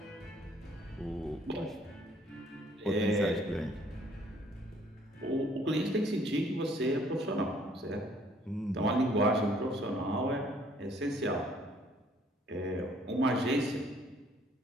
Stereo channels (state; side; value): normal; both; correlation 0.61